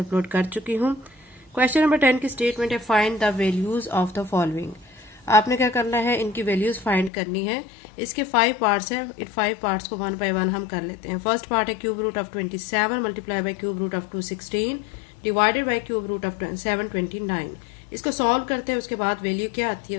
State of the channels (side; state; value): right; drops out; at 7.1 s